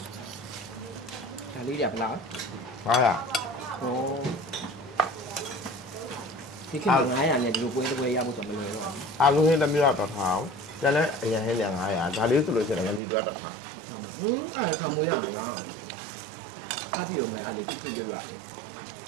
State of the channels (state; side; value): drops out; left; at 13.0 s